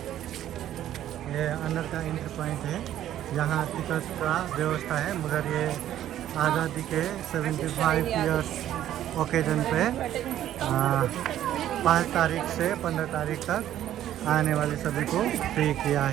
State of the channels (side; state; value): left; quieter; 12.0 dB